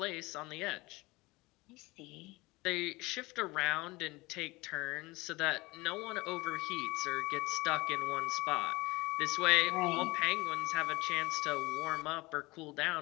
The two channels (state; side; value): quieter; right; 22.4 dB